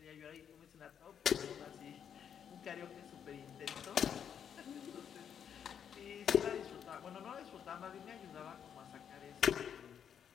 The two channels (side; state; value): right; quieter; 8.3 dB